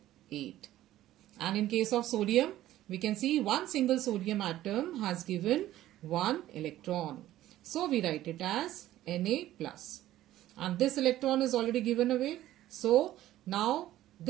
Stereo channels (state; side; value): quieter; left; 14.1 dB